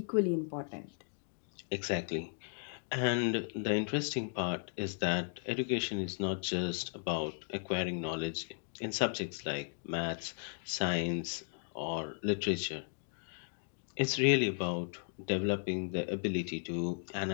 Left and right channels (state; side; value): silent; right; digital silence